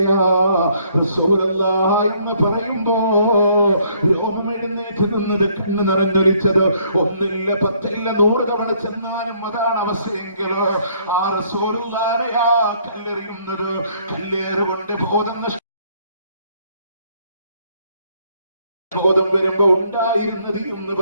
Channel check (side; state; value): both; inverted; correlation -0.65